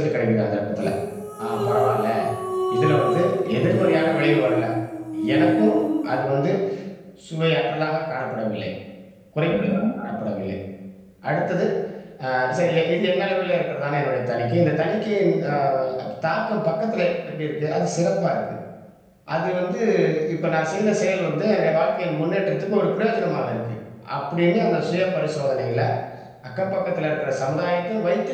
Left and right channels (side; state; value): both; identical; correlation 1.00